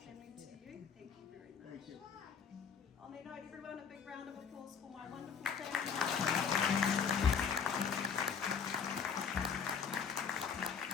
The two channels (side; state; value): right; quieter; 6.5 dB